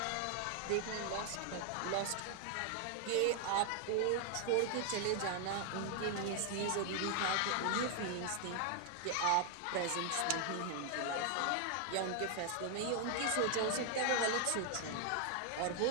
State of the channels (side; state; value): both; different; correlation 0.00